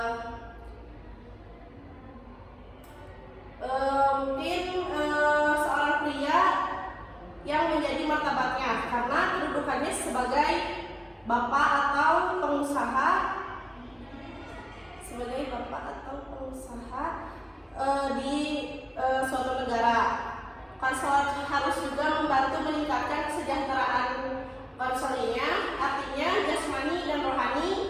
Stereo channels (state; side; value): identical; both; correlation 1.00